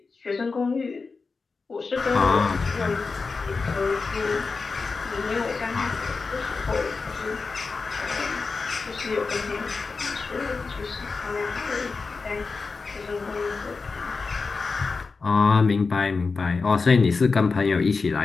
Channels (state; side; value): quieter; right; 4.4 dB